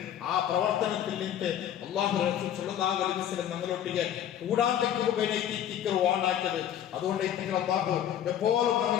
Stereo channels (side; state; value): right; quieter; 10.4 dB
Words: ആ പ്രവർത്തനത്തിൽ നിന്ന് അല്ലാഹു റസൂൽ സ്വല്ലല്ലാഹു അലൈഹി വസല്ലം ഞങ്ങളൊട്ടിಗೆ കൂടാതെക്ക് വാണാക്കിയത്. അതുകൊണ്ട് അല്ലാഹു എപ്പോഴും